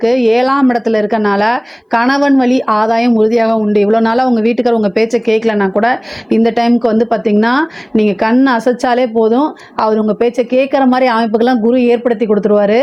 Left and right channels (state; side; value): identical; both; correlation 1.00